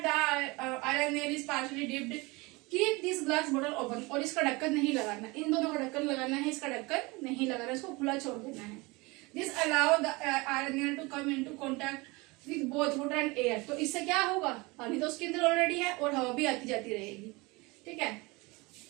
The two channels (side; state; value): left; quieter; 24.7 dB